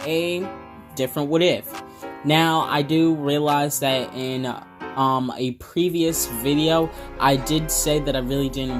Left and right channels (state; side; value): identical; both; correlation 1.00